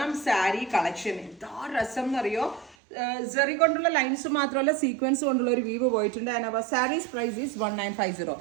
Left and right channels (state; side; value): drops out; left; at 2.8 s